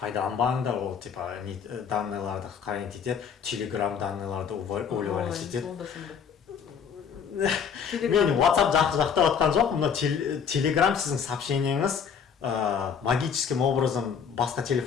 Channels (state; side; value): quieter; right; 7.1 dB